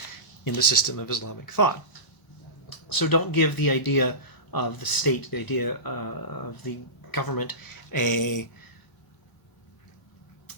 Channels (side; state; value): right; late; 1.0 ms